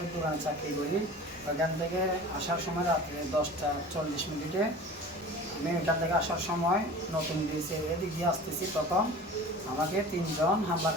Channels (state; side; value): normal; both; correlation 0.39